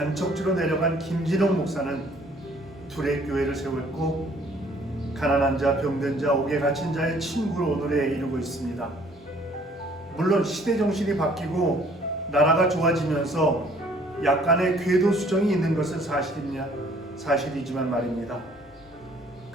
내려간 김진홍 목사는 둘의 교회를 세웠고 가난한 자, 병든 자, 옥에 갇힌 자의 친구로 오늘에 이루고 있습니다. 물론 시대 정신이 바뀌고 나라가 좋아지면서 약간의 궤도 수정이 있는 것은 사실이지만 말입니다.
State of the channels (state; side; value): normal; both; correlation 0.58